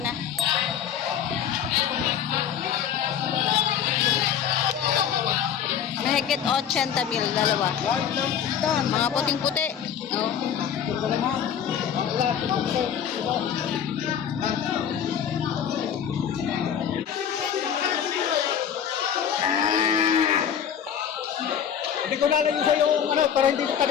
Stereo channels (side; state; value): right; quieter; 8.7 dB